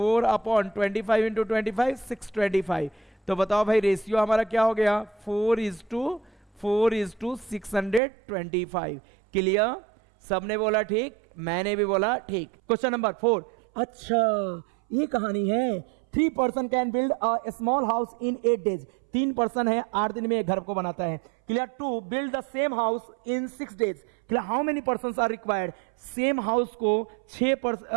अपॉन 25 इंटू 25 625 तो बताओ भाई रेशियो हमारा क्या हो गया 4:625 क्लियर सबने बोला ठीक मैंने भी बोला ठीक क्वेश्चन नंबर 4 अच्छा ये कहानी है 3 person can build a small house in 8 days 3 person है 8 दिन में एक घर को बनाता है clear to build the same house in 6 days clear how many person are required same house को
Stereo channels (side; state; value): left; drops out; at 8.0 s